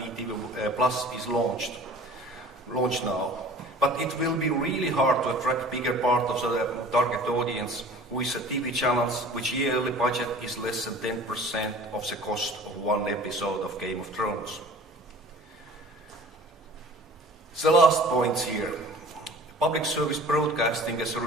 Plus is launched now, but it will be really hard to attract bigger part of the target audience with the TV channels which yearly budget is less than 10% of the cost of one episode of Game of Thrones. The last point here. Public service broadcasting is a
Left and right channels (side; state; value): both; normal; correlation 0.45